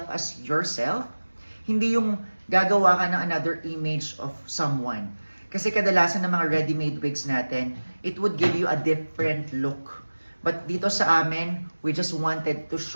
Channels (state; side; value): inverted; both; correlation -1.00